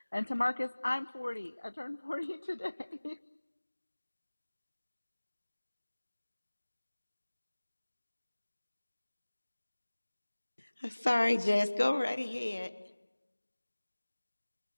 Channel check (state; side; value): inverted; both; correlation -1.00